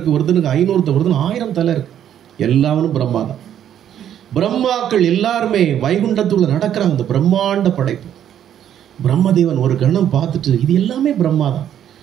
ஒருத்தனுக்கு 500, ஒருத்தனுக்கு 1000 தலை இருக்கு. எல்லாரும் பிரம்மா தான். பிரம்மாக்கள் எல்லாருமே வைகுண்டத்துள்ள நடக்கிறாங்க. இந்த பிரம்மாண்ட படைப்பு பிரம்மதேவன் ஒரு கணம் பார்த்துட்டு, இது எல்லாமே பிரம்மா தான்,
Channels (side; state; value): left; quieter; 10.2 dB